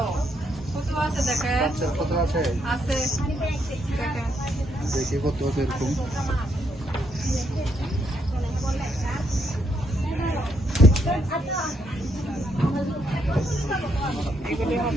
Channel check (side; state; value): both; normal; correlation 0.75